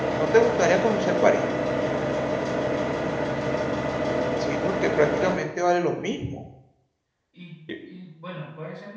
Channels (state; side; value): identical; both; correlation 1.00